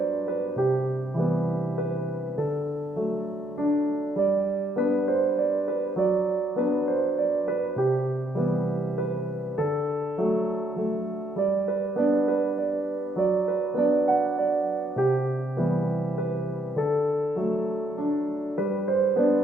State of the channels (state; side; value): normal; both; correlation 0.75